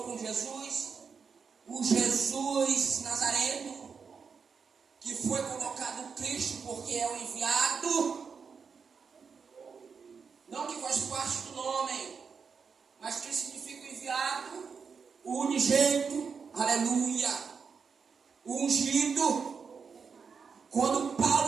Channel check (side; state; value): left; quieter; 5.8 dB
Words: com Jesus? O Jesus Nazareno, que foi colocado Cristo porque é o enviado, não que faz parte do nome, mas que significa o enviado, o unigênito, aleluia, o ungido. Quando